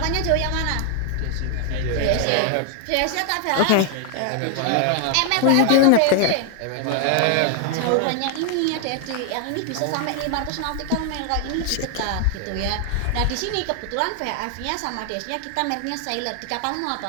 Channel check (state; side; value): different; both; correlation 0.00